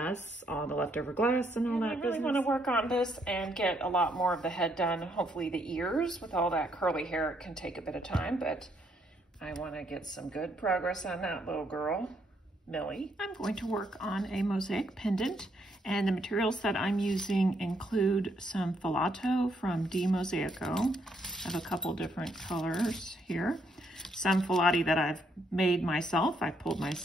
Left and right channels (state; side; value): normal; both; correlation 0.73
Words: all the leftover glass and all that business. I really want to work on this and get a lot more of the head done. Hopefully the ears, with all that curly hair, it can take a bit of time, but I want to get some good progress on that little girl, Millie. I'm going to work on a mosaic pendant, and the materials that I'm using include some filato from Mosaico. I have a couple different colors here. Some filati that I've made myself, I pulled